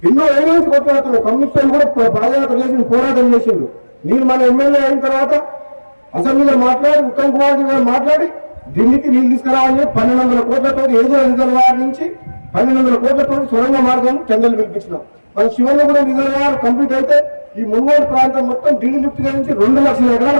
ఎన్నో ఏరియాస్ కొట్లాడుతున్నాం. కమ్యూనిస్టులు కూడా పాదయాత్ర చేసి పోరాటం చేసిండ్రు. నేను మన ఎమ్మెల్యే అయిన తర్వాత అసెంబ్లీలో మాట్లాడి ఉత్తమ్ కుమార్ గారు మాట్లాడి ఢిల్లీకి నీళ్ళు తీసుకురావాలని 1200 కోట్లతో ఏదో రిజర్వాయర్ నుంచి 1200 కోట్లతో సొరంగ మార్గం టెండర్లు పిలిపించినాం. మన శివన్న కూడా రిజర్వాయర్ కంప్లీట్ అయితే ఈ మునుగోడు ప్రాంతం మొత్తం ఢిల్లీ లిఫ్ట్ నుంచి 2 లక్షల ఎకరాల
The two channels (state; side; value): inverted; both; correlation -1.00